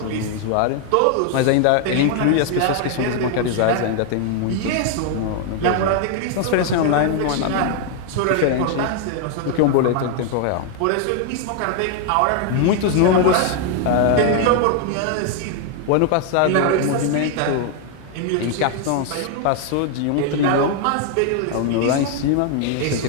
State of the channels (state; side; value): different; both; correlation 0.00